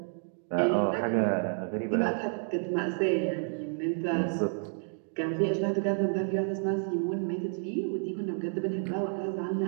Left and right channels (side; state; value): left; silent; 58 dB below the other